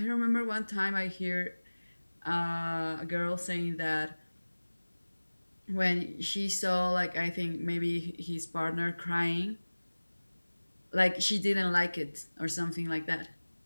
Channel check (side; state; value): both; inverted; correlation -1.00